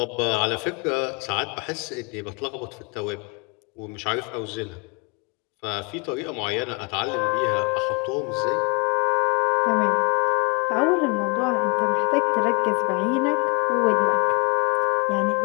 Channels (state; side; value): quieter; right; 31.1 dB